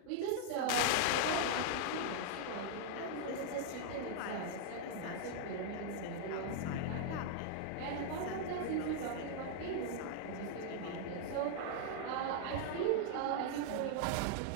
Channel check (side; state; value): both; different; correlation -0.01